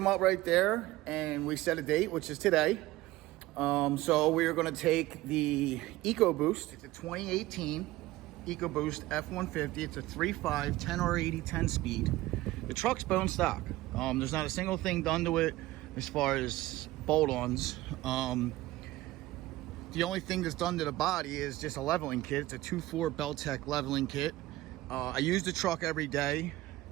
up right there, and we set a date, which is today. So we're gonna take the Ecoboost. It's a 2018 Ecoboost F-150. It's a 3.5, 10R80, 10-speed. The truck's bone stock. There's not a single thing done to it as far as bolt-ons. The only thing that's done to the body is just a leveling kit. It's a 2.4 Beltec leveling kit. I use the truck every day.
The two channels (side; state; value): left; quieter; 17.4 dB